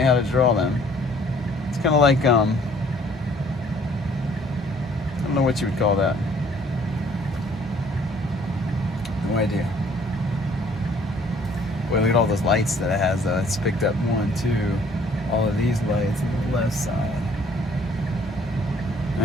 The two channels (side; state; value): both; normal; correlation 0.59